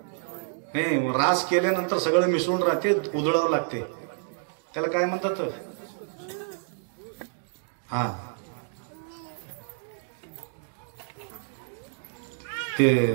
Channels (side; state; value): left; silent; digital silence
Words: नाही रास केल्यानंतर सगळं मिसळून राहते, उधळावं लागते. त्याला काय म्हणतात? हा, ते